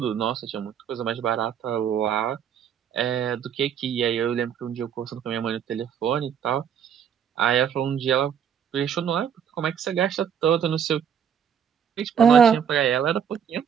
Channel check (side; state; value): left; quieter; 8.1 dB